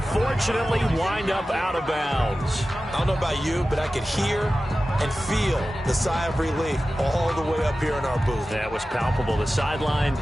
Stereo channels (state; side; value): normal; both; correlation 0.95